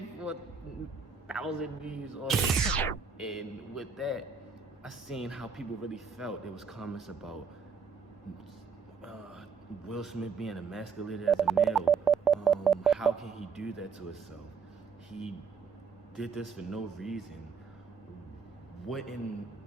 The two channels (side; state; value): left; quieter; 5.7 dB